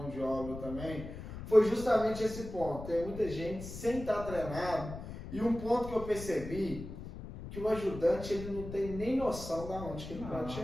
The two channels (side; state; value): left; noise; rumble, 10 dB below the sound